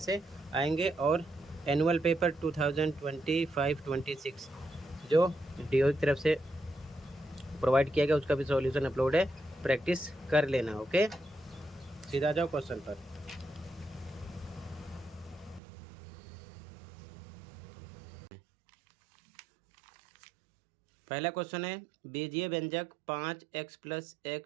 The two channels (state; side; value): drops out; left; at 15.6 s